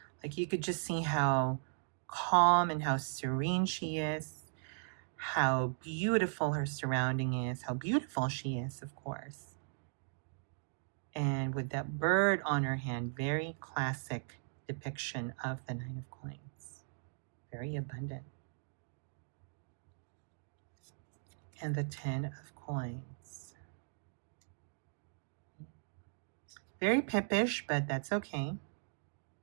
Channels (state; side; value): silent; left; digital silence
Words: Like you could just see how calm and how serene she is, how beautiful her surrounding is, how beautiful she is, of course. And with that bird on her hand, very classic depiction of the Nine of Coins. Very abundant. And the Ten of Coins. Very pippish, but that's okay.